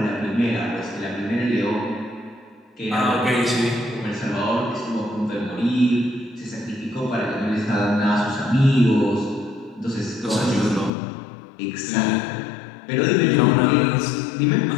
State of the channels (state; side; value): drops out; right; at 10.9 s